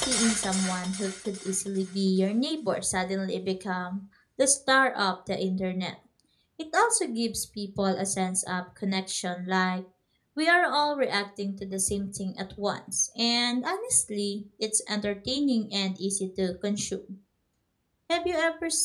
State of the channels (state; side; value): identical; both; correlation 1.00